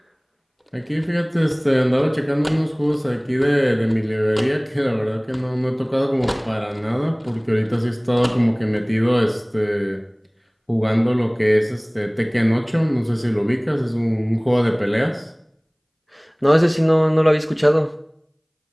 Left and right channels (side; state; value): both; identical; correlation 1.00